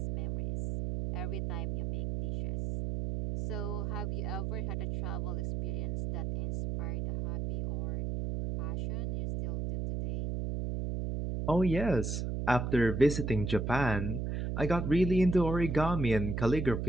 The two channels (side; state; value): right; noise; hum, 2 dB below the sound